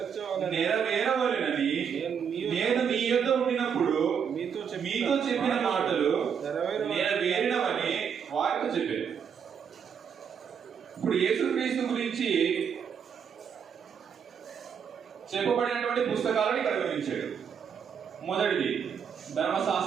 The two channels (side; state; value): left; quieter; 7.3 dB